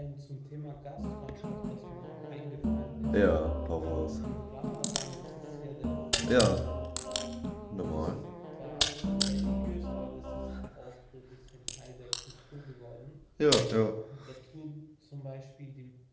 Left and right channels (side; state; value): both; identical; correlation 1.00